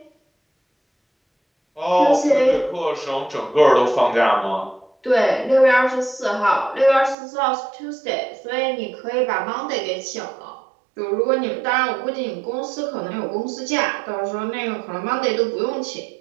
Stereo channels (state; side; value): drops out; left; at 7.2 s